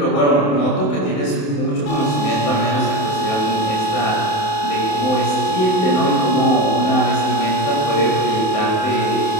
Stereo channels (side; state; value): right; late; 27 ms